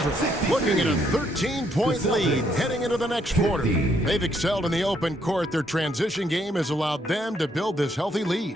looking at a 13-point lead heading into the next quarter. They've excelled in the open court. Their transition game has allowed them to build this healthy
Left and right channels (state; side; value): normal; both; correlation 0.72